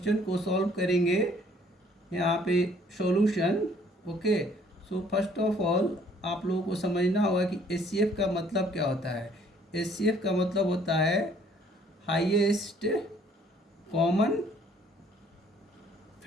को सॉल्व करेंगे। यहाँ पे solution. Okay, so first of all आप लोगों को समझना होगा कि HCF का मतलब क्या होता है। HCF का मतलब होता है हाईएस्ट कॉमन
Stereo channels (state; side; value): normal; both; correlation 0.60